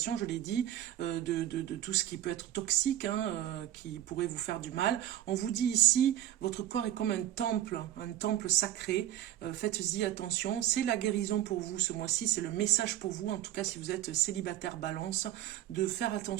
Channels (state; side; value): quieter; left; 12.5 dB